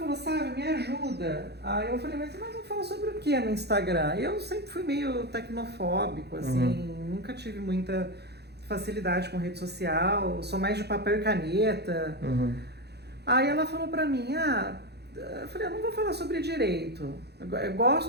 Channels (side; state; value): left; late; 0.48 ms